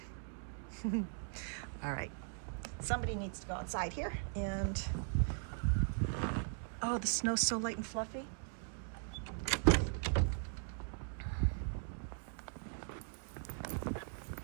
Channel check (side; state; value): left; silent; 51 dB below the other